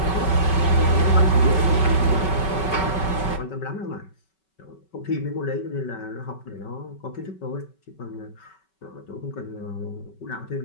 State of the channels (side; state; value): right; late; 5.3 ms